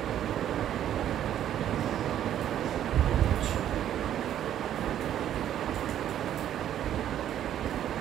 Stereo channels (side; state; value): left; quieter; 10.9 dB